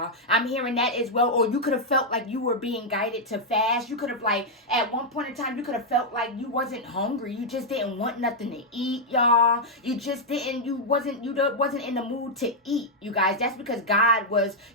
I'm hearing that as well. Or you could have felt like you were being guided to fast. You could have, like, at one point in time, you could have felt like you wasn't hungry. You just didn't want nothing to eat, y'all. You just didn't, you wasn't in the mood to eat, you guys. That's because God was,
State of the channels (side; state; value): both; normal; correlation -0.03